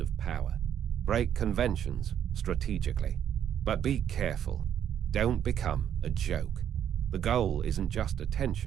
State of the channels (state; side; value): quieter; left; 9.5 dB